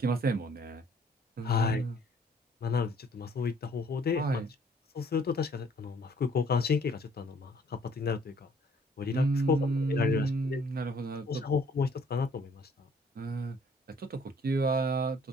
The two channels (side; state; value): both; normal; correlation 0.60